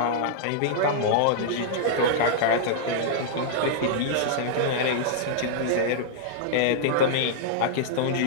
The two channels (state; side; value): different; both; correlation -0.01